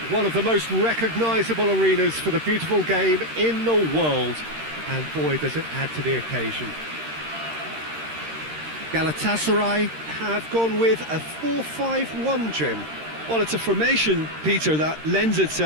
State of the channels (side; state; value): left; late; 13 ms